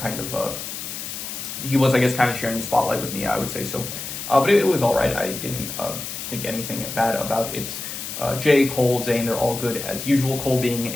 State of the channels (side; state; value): left; noise; hiss, 7 dB below the sound